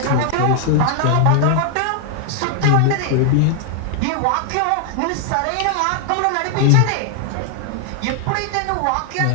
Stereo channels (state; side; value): different; both; correlation 0.00